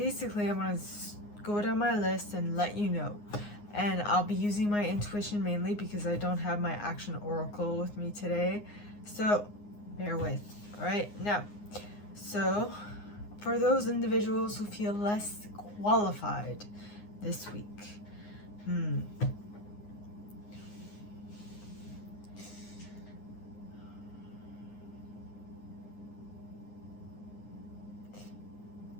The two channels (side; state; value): right; late; 9.7 ms